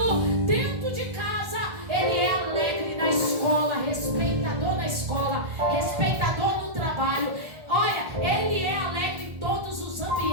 dentro de casa, ele é alegre na escola, respeitador na escola, respeitador no trabalho. Olha, ele é alegre em todos os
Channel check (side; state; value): left; late; 1.6 ms